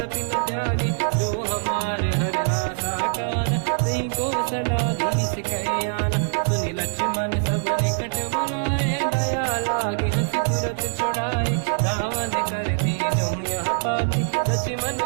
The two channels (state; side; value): silent; left; digital silence